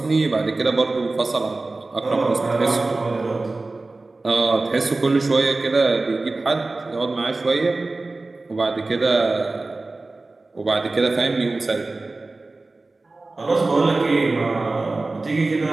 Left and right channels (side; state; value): left; quieter; 3.3 dB